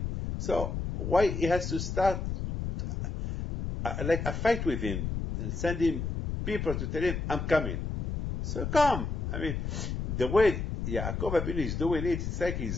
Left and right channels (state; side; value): noise; left; rumble, 3 dB below the sound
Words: So why he has to start like a fight with him and send him people to tell him I'm coming? So come. I mean, the way Yaakov Abinu is doing it, it's like